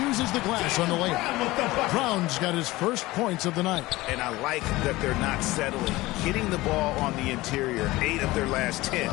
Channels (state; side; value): quieter; right; 19.3 dB